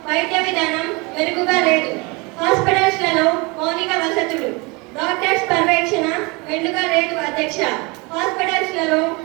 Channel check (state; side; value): quieter; left; 27.3 dB